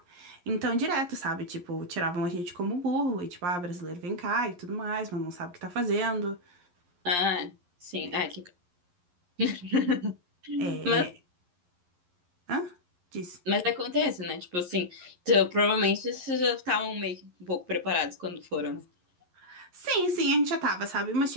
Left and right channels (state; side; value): late; left; 11 ms